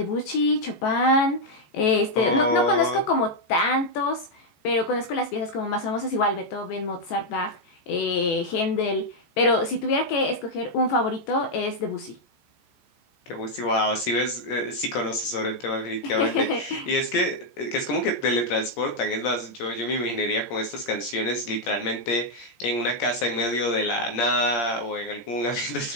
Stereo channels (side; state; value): right; late; 14 ms